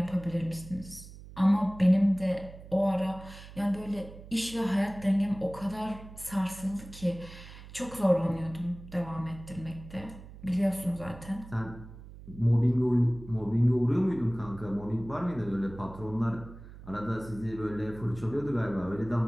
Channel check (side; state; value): right; noise; hum, 16 dB below the sound